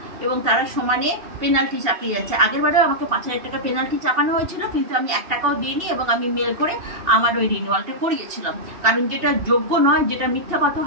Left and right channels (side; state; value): left; late; 2.7 ms